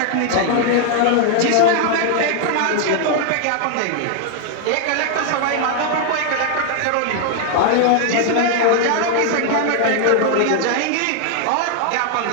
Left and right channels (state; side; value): different; both; correlation 0.00